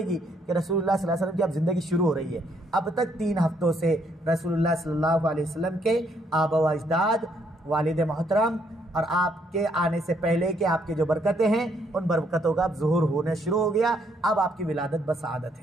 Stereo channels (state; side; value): normal; both; correlation 0.70